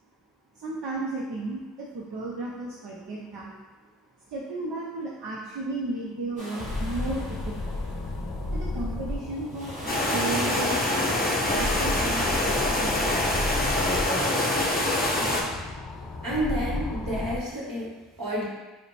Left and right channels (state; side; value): normal; both; correlation 0.41